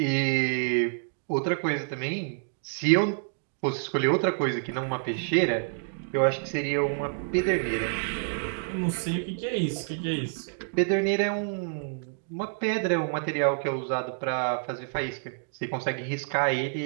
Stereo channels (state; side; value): silent; left; digital silence